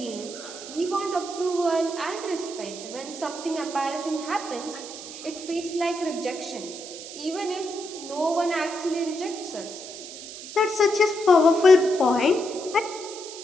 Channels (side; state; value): right; noise; hiss, 12 dB below the sound